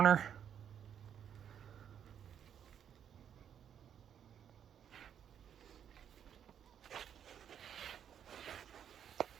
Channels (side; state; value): left; quieter; 8.8 dB